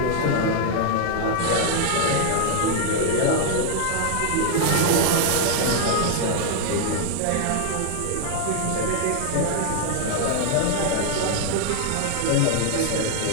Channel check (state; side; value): different; both; correlation 0.00